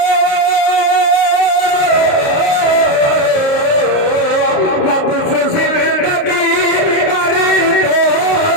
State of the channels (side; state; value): right; late; 29 ms